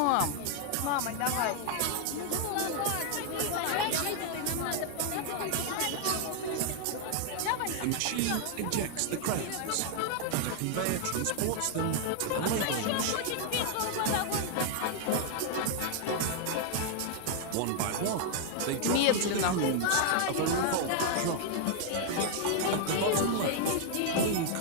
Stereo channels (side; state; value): both; different; correlation 0.00